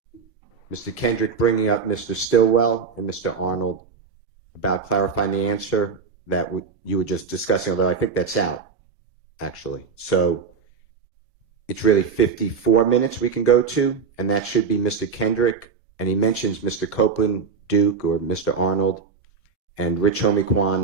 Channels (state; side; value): quieter; left; 5.5 dB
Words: Mr. Kendrick bringing up Mr. Stillwell and Mr. Arnold about clarifying the answer that you were just discussing, although I think that's out, actually. So it's really 54 minutes we can go to, and that should be Mr. Kendrick. And he mentions Mr. Copeland, Duke, or Mr. Arnold, and Rich